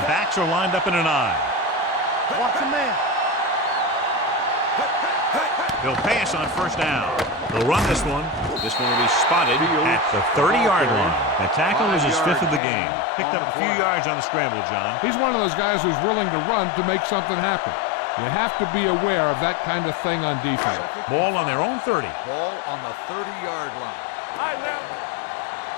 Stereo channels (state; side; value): drops out; right; at 12.6 s